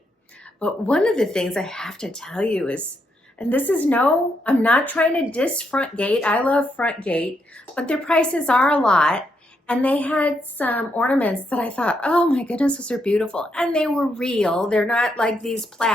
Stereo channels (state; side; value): normal; both; correlation 0.78